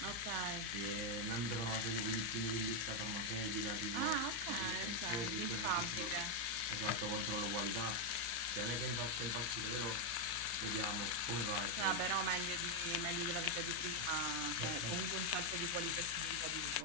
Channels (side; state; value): left; late; 34 ms